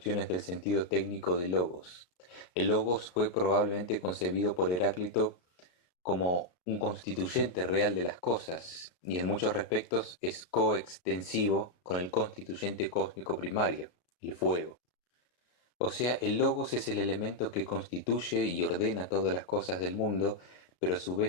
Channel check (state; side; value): late; right; 34 ms